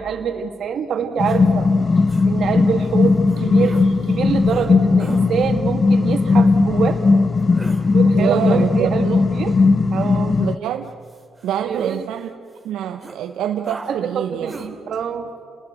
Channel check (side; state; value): both; normal; correlation 0.85